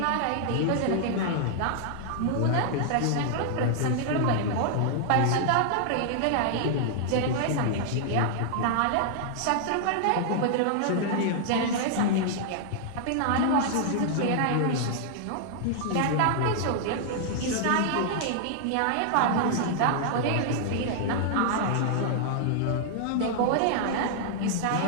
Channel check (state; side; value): different; both; correlation -0.01